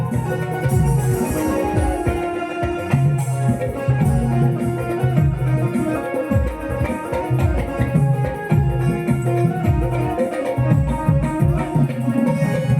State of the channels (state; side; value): identical; both; correlation 1.00